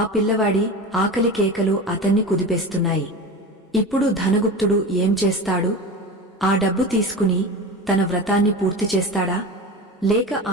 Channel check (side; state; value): both; normal; correlation 0.29